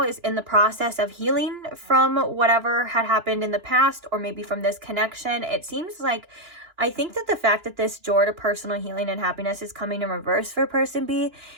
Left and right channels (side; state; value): left; late; 2.9 ms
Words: is in the process of healing from whatever had happened in the past, or maybe from this connection. It seems like, I think that the fact that this door to personal healing and happiness is coming in reverse for person B